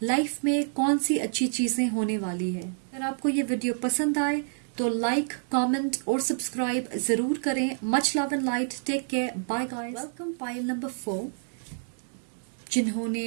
लाइफ में कौन सी अच्छी चीजें होने वाली है। अगर आपको ये वीडियो पसंद आए तो लाइक, कमेंट और सब्सक्राइब जरूर करें। Much love and light, take care, bye guys. Welcome pile number 4।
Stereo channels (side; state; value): left; silent; digital silence